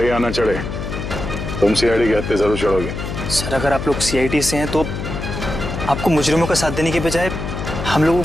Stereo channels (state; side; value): noise; left; hum, 6 dB below the sound